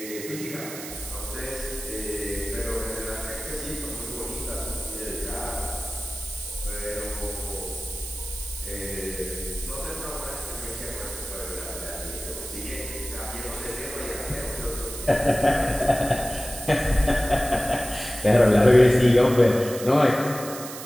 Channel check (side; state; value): right; noise; hiss, 10 dB below the sound